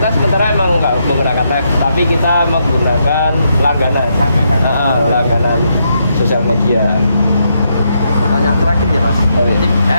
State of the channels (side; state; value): both; inverted; correlation -0.79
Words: sementara emang nggak menggunakan live, tapi kita menggunakan langganan. Langganan sosial media. Pertanyaan terakhir ya mas.